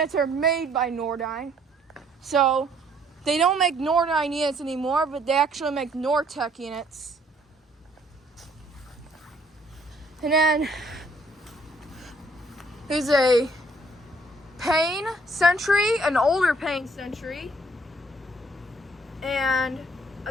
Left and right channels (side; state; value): both; normal; correlation 0.63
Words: are made by Nordyne, so they don't make Nordyne units anymore, but they actually make Nortec units. And then there's a Payne Century, an older Payne Century, and